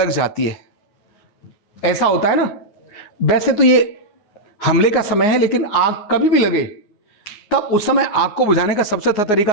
जाती है, ऐसा होता है ना। वैसे तो ये हमले का समय है, लेकिन आग कभी भी लगे तब उस समय आग को बुझाने का सबसे अच्छा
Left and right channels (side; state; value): right; late; 9.5 ms